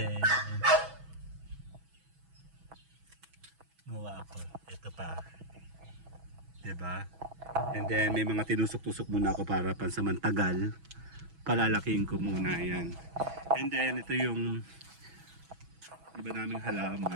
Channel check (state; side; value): late; left; 6.1 ms